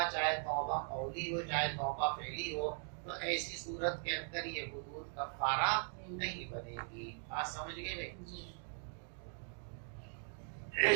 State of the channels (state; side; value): silent; left; 51 dB below the other